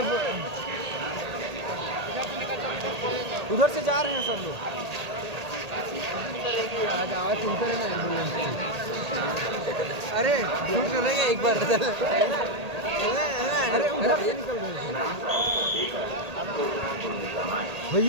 उधर से जा रहे हैं सब लोग। आज आवाज सुनते रहे ना एम्बुलेंस। अरे सुनेंगे एक बार। अरे उधर से निकल रहे थे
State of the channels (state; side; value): late; left; 1.8 ms